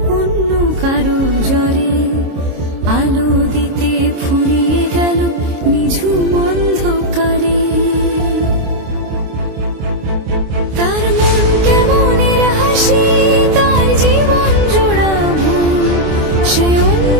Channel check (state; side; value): late; left; 26 ms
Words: অন্য কারো জ্বরে, আলো দিতে ফুরিয়ে গেল নিঝুম অন্ধকারে। তার মন কেমনের হাসি, তার জীবন জোড়া ভুল, সে